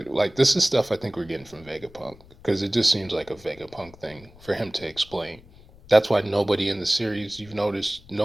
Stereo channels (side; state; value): left; noise; rumble, 23 dB below the sound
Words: Like this is stuff I think we're getting from Vegapunk because it just seems like a Vegapunk thing for him to explain. That's why nobody in the series, you've noticed,